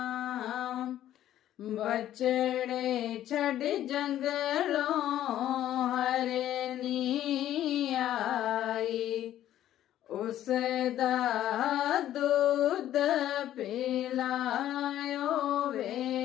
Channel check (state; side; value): quieter; right; 12.3 dB